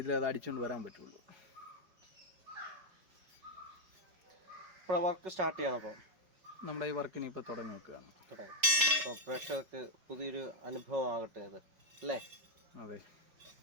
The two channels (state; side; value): late; left; 5.4 ms